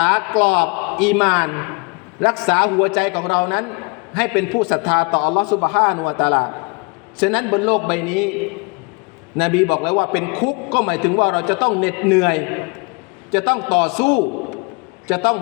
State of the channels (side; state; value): right; quieter; 31.0 dB